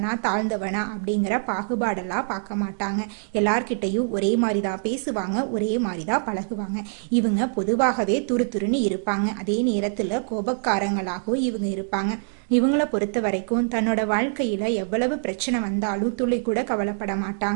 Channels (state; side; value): silent; left; digital silence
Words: தாழ்ந்தவனா அப்படிங்கிற பாகுபாடெல்லாம் பார்க்க மாட்டாங்க. எல்லார்கிட்டையும் ஒரே மாதிரி தான் பேசுவாங்க, ஒரே மாதிரி தான் பழகுவாங்க. இவங்க பொதுவாகவே துருதுருன்னு இருப்பாங்க. அதே நேரத்தில் கோபக்காரங்களாகவும் இவங்க இருப்பாங்க. இவங்கள பொறுத்த வரைக்கும் தன்னோட வாழ்க்கையில எவ்வளவு பிரச்சனை வந்தாலும் துளி கூட கவலைப்பட